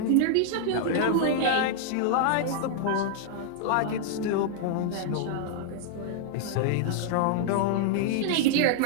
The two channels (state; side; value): different; both; correlation -0.01